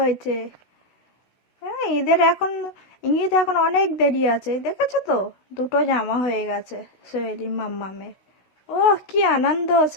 হ্যাঁ, ঈদ এখন অনেক দেরি আছে, দেখেছো তো? দুটো জামা হয়ে গেছে শৈলী মামামের। ও কি আনন্দ,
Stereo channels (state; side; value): late; right; 16 ms